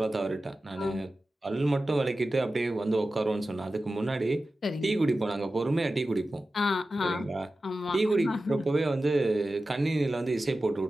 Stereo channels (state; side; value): normal; both; correlation 0.94